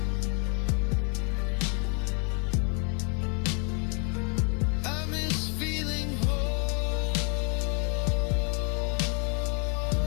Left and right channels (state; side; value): quieter; right; 37.7 dB